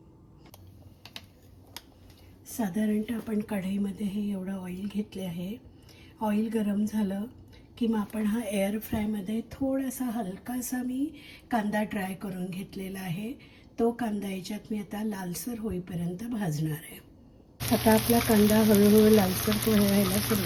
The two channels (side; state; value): both; identical; correlation 1.00